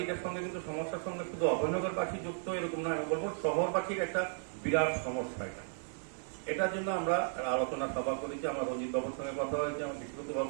এটার সঙ্গে কিন্তু সমস্যার সঙ্গে শুধু অভয়নগরবাসী যুক্ত এরকম না আমি বলবো শহরবাসীর একটা বিরাট সমস্যা এটার জন্য আমরা আলোচনা সভা করেছি আমার রঞ্জিত বাবুর সঙ্গে কথা হয়েছে আমার বিশ্বতভাবে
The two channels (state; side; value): silent; left; digital silence